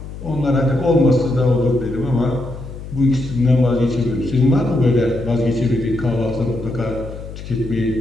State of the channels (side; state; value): left; noise; hum, 11 dB below the sound